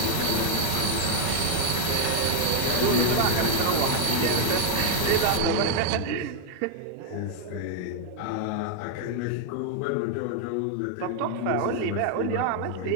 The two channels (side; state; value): both; different; correlation 0.00